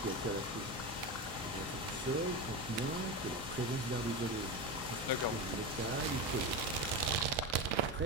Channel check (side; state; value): both; normal; correlation 0.19